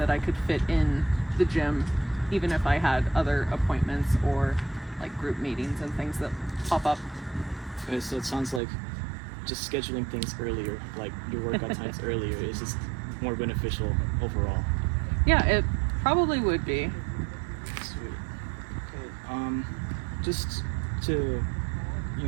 I could fit in the gym, even if I had other appointments or like group meetings and things that pop up. Okay, so it sounds like just scheduling things earlier, like your workout times earlier, is just more beneficial overall. Yeah, it probably would be. Sweet. Okay. Just to,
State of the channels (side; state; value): left; drops out; at 8.6 s